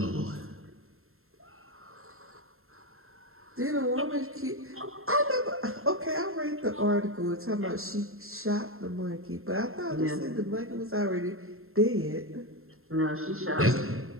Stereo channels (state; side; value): late; left; 0.62 ms